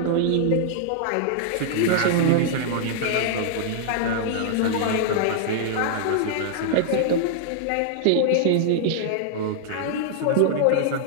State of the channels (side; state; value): both; different; correlation -0.01